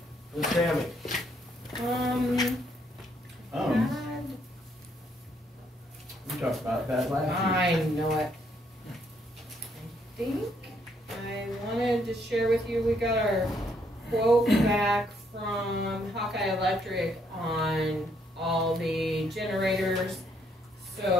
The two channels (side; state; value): both; normal; correlation 0.71